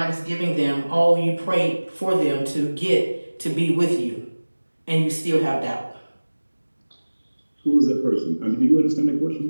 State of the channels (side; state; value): both; inverted; correlation -1.00